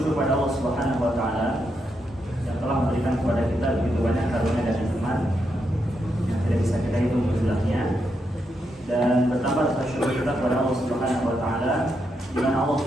kepada Allah Subhanahu wa taala yang telah memberikan kepada kita begitu banyak karunia dan nikmat yang tidak bisa kita hitung jumlahnya. Dan bertambah rasa syukur kita kepada Allah Subhanahu wa taala di mana Allah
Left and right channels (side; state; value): both; normal; correlation 0.82